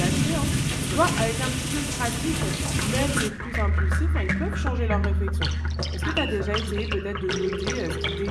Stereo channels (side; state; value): both; identical; correlation 1.00